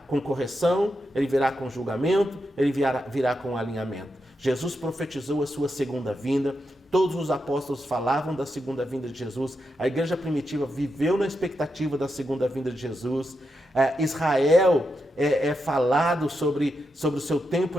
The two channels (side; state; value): both; normal; correlation 0.85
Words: com correção, Ele virá com julgamento, Ele virá com alinhamento. Jesus profetizou a sua segunda vinda, todos os apóstolos falavam da segunda vinda de Jesus, a igreja primitiva viveu na expectativa da segunda vinda de Jesus, Israel é falado sobre o seu